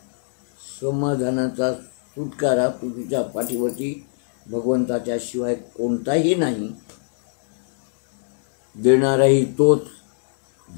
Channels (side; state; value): right; silent; digital silence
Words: समाधानाचा सुटकारा तुझ्या पाठीवरती भगवंताच्या शिवाय कोणताही नाही. देणाराही तोच,